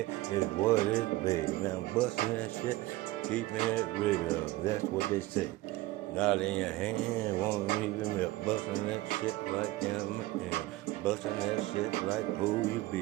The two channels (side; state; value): left; quieter; 18.2 dB